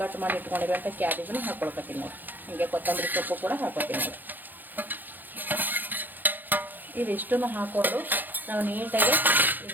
ಮಾಡಿ ಇಟ್ಕೊಂಡಿರುವಂಥ ಕ್ಯಾಬೇಜನ್ನು ಹಾಕೊಳಕತ್ತೀನಿ ನೋಡಿ. ಹಾಗೆ ಕೊತ್ತಂಬರಿ ಸೊಪ್ಪು ಕೂಡ ಹಾಕೋತೀನಿ ನೋಡಿ. ಇದಿಷ್ಟನ್ನು ಹಾಕ್ಕೊಂಡು ನಾವು ನೀಟಾಗಿ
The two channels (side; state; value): left; late; 0.087 ms